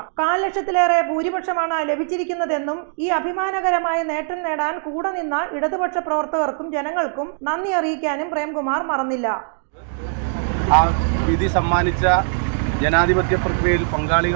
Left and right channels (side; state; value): left; silent; digital silence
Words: 4 ലക്ഷത്തിലേറെ ഭൂരിപക്ഷമാണ് ലഭിച്ചിരിക്കുന്നതെന്നും ഈ അഭിമാനകരമായ നേട്ടം നേടാൻ കൂടെ നിന്ന ഇടതുപക്ഷ പ്രവർത്തകർക്കും ജനങ്ങൾക്കും നന്ദി അറിയിക്കാനും പ്രേംകുമാർ മറന്നില്ല. ആ വിധി സമ്മാനിച്ച ജനാധിപത്യ പ്രക്രിയയിൽ